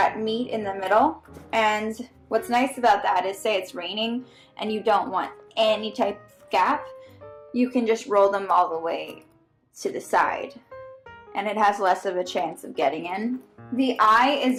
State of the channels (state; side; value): identical; both; correlation 1.00